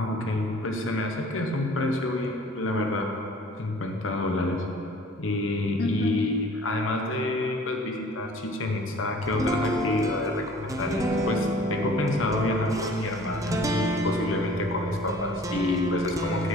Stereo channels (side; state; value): both; normal; correlation 0.50